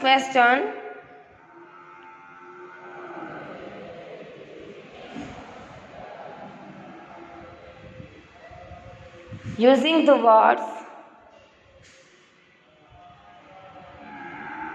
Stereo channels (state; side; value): identical; both; correlation 1.00